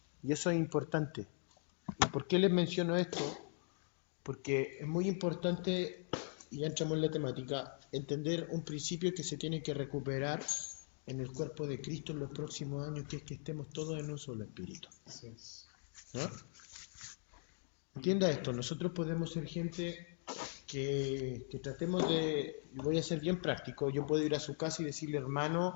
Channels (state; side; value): silent; right; digital silence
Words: Y eso es importante. ¿Y por qué les menciono esto? Porque es muy importante, y ya entramos en la temática, entender un principio que se tiene que recuperar en el cuerpo de Cristo en los próximos años, que es que estemos todos en un solo espíritu. ¿No? Entienda esto, nosotros podemos ser gente que tratemos de, y voy a ser bien práctico, yo puedo ir a su casa y decirle: hermano,